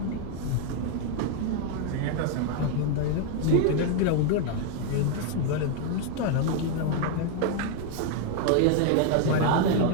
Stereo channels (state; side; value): different; both; correlation 0.00